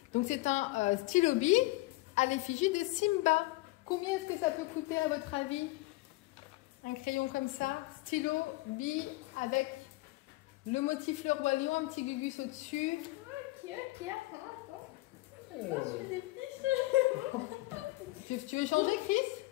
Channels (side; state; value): right; quieter; 20.6 dB